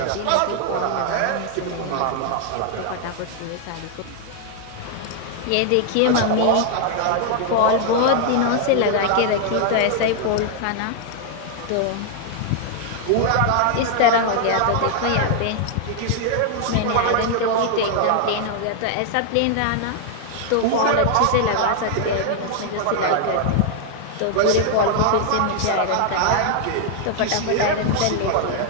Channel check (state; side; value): different; both; correlation 0.00